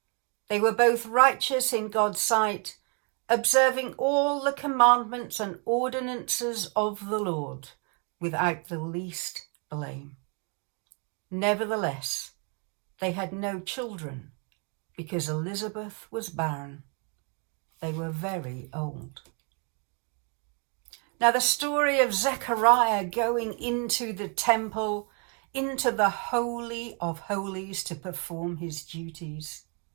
They were both righteous in God's sight, observing all the commandments and ordinances of the Lord without the least blame. Nevertheless, they had no children because Elizabeth was barren. They were very old. Now the story of Zechariah going into the temple, into the Holy of Holies to perform his duties,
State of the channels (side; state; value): left; quieter; 35.9 dB